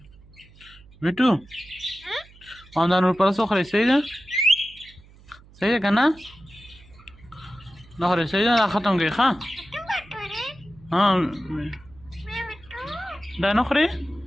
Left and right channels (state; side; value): noise; right; hum, 24 dB below the sound